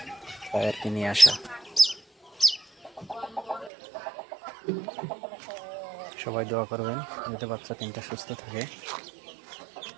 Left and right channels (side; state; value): left; drops out; at 3.7 s